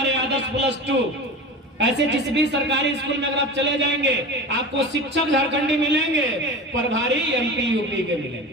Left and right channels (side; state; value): both; normal; correlation 0.31